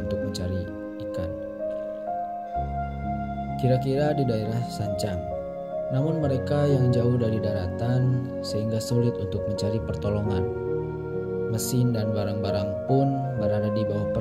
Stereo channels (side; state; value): both; identical; correlation 1.00